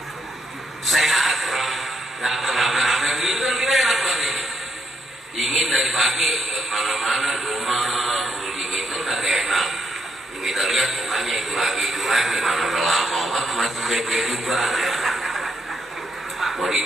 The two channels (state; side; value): normal; both; correlation 0.76